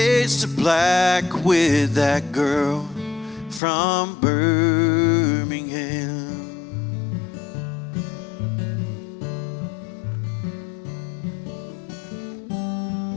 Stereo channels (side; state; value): right; drops out; at 3.6 s